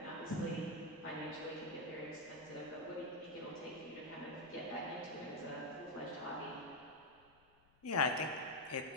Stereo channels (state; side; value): noise; left; rumble, 30 dB below the sound